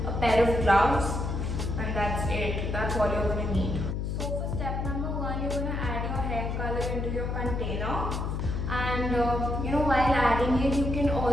a pair of gloves, and that's it. That's all you're gonna need. So for step number 1, you're gonna add your hair color into your container, and while adding it, you can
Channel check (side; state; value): left; noise; hum, 2 dB below the sound